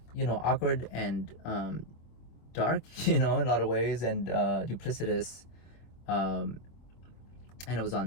awkward and dark, in a lot of ways, and duplicitous. And it was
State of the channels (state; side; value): late; right; 25 ms